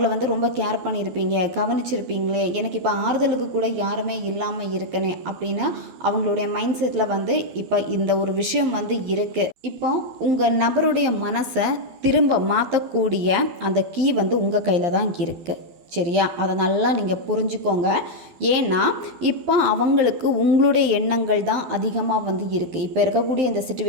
ரொம்ப கேர் பண்ணியிருப்பீங்க, கவனிச்சிருப்பீங்களே, எனக்கு இப்போ ஆறுதலுக்கு கூட யாருமே இல்லாமல் இருக்கனே அப்படின்னு அவங்களுடைய மைண்ட் செட்டில் இப்போ இந்த ஒரு விஷயம் இருக்குது. இப்போ உங்கள் நபருடைய மனசை திரும்ப மாற்றக்கூடிய அந்த கீ உங்கள் கையில் தான் இருக்குது. சரியா? அதை நல்லா நீங்கள் புரிஞ்சுக்கோங்க. ஏன்னா இப்போ அவங்களுக்கு உங்களுடைய எண்ணங்கள் தான் அதிகமாக இருக்குது. இப்போ இருக்கக்கூடிய இந்த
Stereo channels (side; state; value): left; late; 12 ms